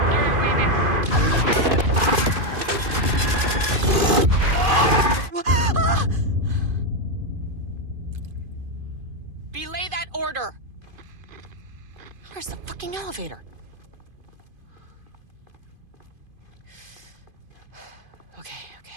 Belay that order. Where's the fucking elevator? Okay.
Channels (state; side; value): late; left; 2.5 ms